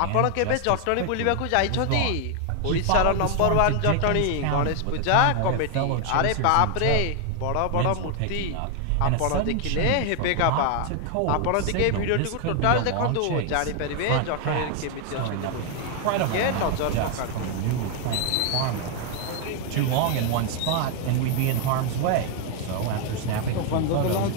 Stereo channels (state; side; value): different; both; correlation 0.01